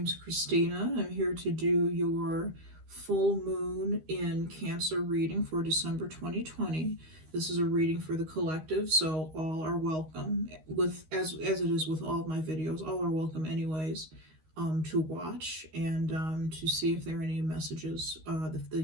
Christina. I'm here to do your full moon in Cancer reading for December 2020. This is a reading for the collective, so all are welcome. As it is with all of my videos, all are welcome anyways to watch and to see if there are any messages, if the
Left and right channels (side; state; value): left; late; 13 ms